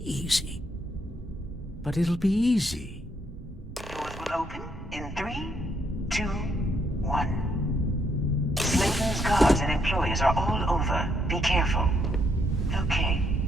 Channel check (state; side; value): normal; both; correlation 0.74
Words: easy. But it'll be easy. Doors will open in 3, 2, 1. Slayton's guards and employees are all over. Be careful. Okay.